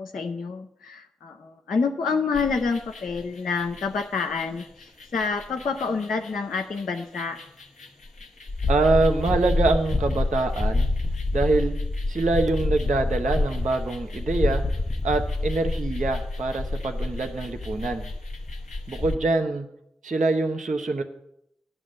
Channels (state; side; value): normal; both; correlation 0.80